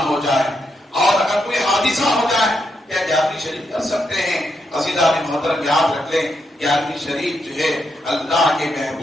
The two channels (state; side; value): normal; both; correlation 0.81